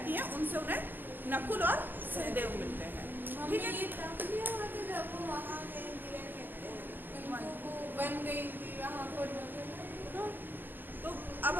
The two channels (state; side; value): late; left; 0.094 ms